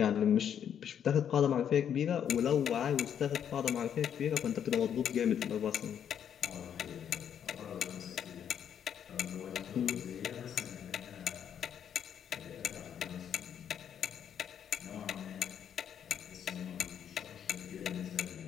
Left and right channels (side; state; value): right; quieter; 8.8 dB